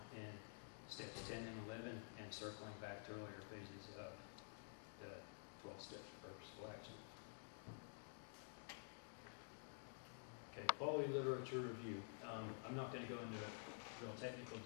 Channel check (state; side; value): silent; right; digital silence